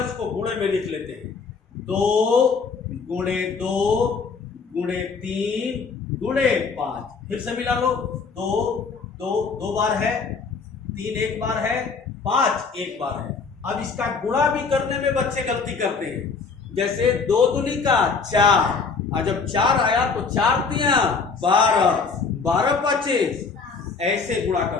उसको गुणे में लिख लेते हैं, 2 गुणे 2 गुणे 3 गुणे 5। फिर से मिला लो, 2 बार है, 3 एक बार है, 5 एक बार है। अब इसका गुणा भी करने में बच्चे गलती करते हैं, जैसे 2 दूनी का 4, और जब 4 आया तो 4 तिया 12, 12 25, ऐसे गुणा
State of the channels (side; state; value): right; quieter; 4.9 dB